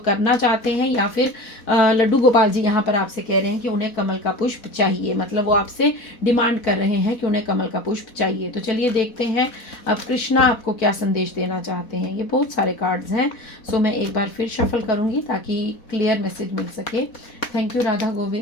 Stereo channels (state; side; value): late; right; 4.1 ms